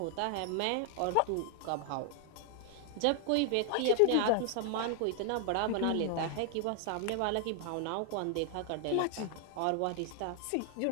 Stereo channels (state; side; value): different; both; correlation 0.00